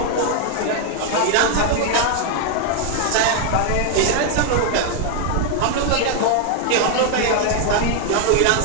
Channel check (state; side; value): different; both; correlation 0.00